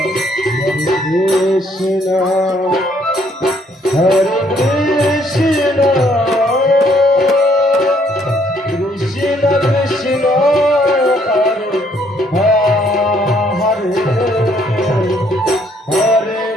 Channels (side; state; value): both; normal; correlation 0.67